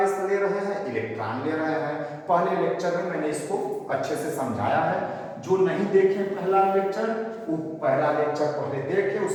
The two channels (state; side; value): identical; both; correlation 1.00